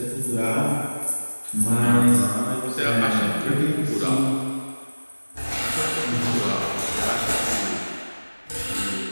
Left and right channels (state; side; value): inverted; both; correlation -1.00